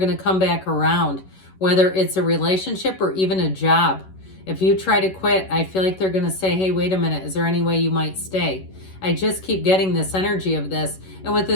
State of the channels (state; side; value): late; right; 11 ms